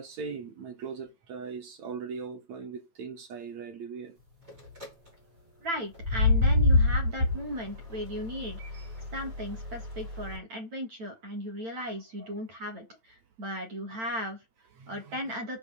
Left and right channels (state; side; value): late; left; 8.9 ms